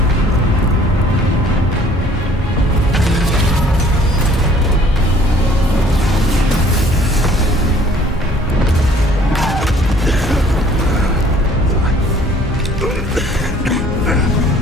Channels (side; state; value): both; normal; correlation 0.57